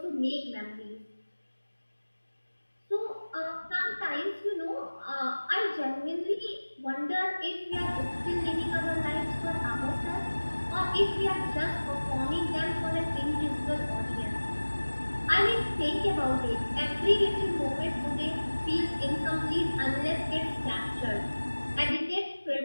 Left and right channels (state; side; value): inverted; both; correlation -1.00